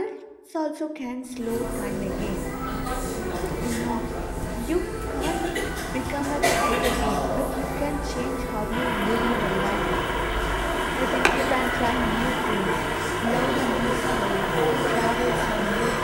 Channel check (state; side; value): identical; both; correlation 1.00